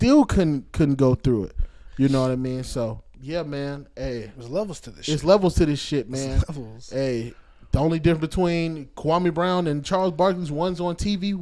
couldn't go through it. You know what I mean? So, yeah, man. Hey. There's levels to this shit. It's levels to this shit, man. Hey, the only difference between Kwame Brown and Charles Barkley's, one's on TV,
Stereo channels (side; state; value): both; identical; correlation 1.00